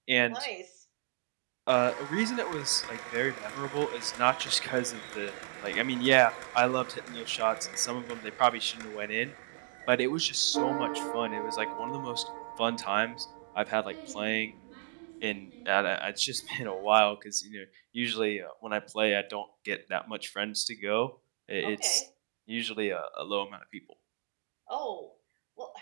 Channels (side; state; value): left; silent; digital silence